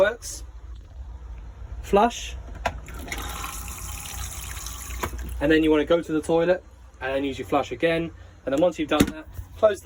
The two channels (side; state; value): both; identical; correlation 1.00